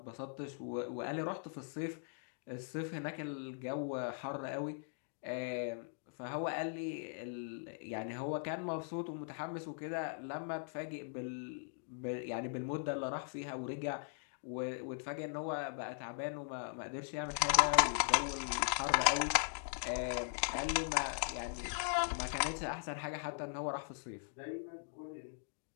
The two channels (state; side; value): silent; right; digital silence